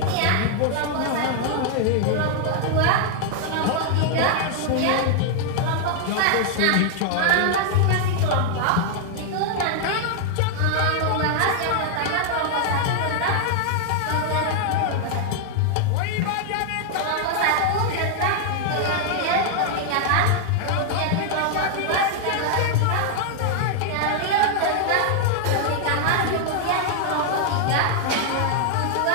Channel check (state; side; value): different; both; correlation 0.00